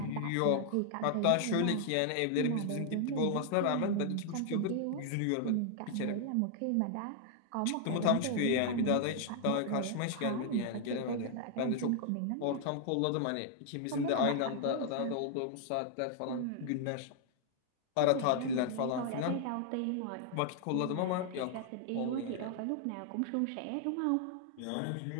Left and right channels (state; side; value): different; both; correlation 0.00